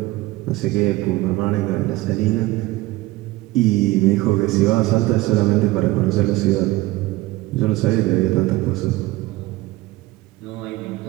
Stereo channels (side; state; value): left; quieter; 18.8 dB